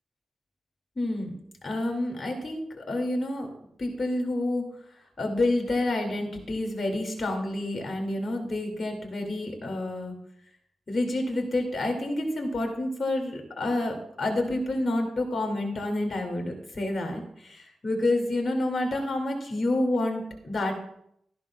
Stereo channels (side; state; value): both; normal; correlation 0.92